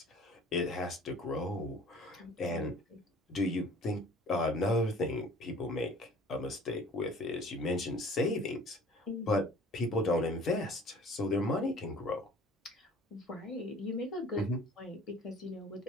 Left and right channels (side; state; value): both; normal; correlation 0.49